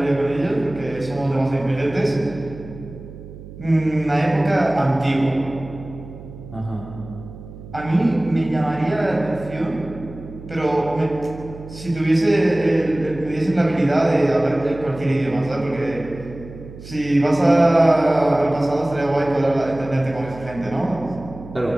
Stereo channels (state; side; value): noise; right; hum, 15 dB below the sound